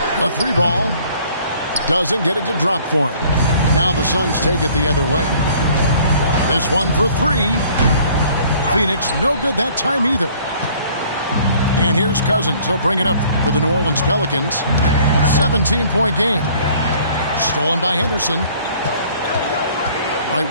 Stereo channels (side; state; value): both; inverted; correlation -0.55